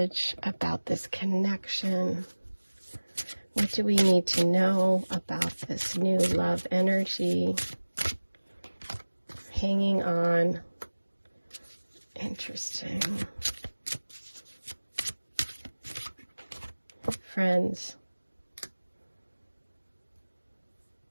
about this connection. What do we need to know about this new love energy? Hanging on. Interesting. Friends.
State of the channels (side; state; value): both; inverted; correlation -1.00